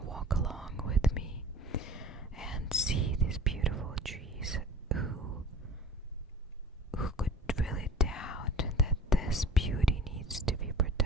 walk along with me and see these beautiful trees, who could really doubt that this beauty needs to be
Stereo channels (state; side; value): normal; both; correlation 0.44